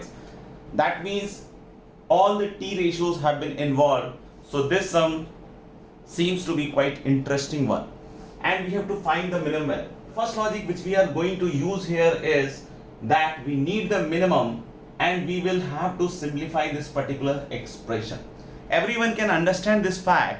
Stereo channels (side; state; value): both; identical; correlation 1.00